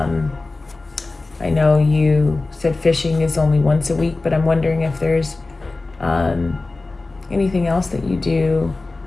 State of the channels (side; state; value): right; quieter; 3.4 dB